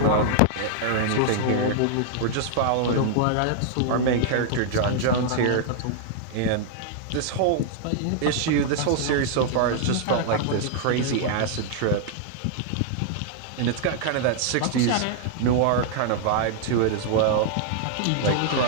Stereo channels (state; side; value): different; both; correlation -0.01